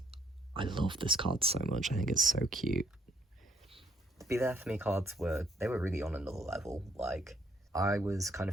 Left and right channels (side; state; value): both; normal; correlation 0.69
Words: I love this card so much. I think it's so cute. The Be There For Me cards were really on another level. Like, I was kind